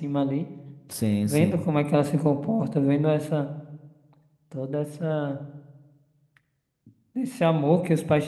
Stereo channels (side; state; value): both; identical; correlation 1.00